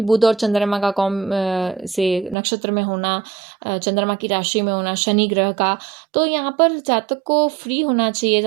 बुध और चंद्रमा का से नक्षत्र में होना, चंद्रमा की राशि में होना शनि ग्रह का, तो यहाँ पर जातक को फ्री होना चाहिए,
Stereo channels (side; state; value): left; drops out; at 2.4 s